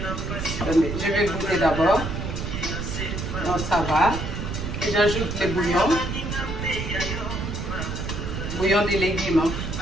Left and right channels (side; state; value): right; noise; rumble, 4 dB below the sound